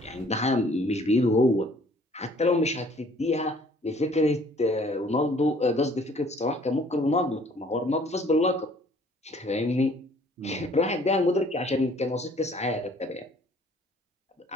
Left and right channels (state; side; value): normal; both; correlation 0.57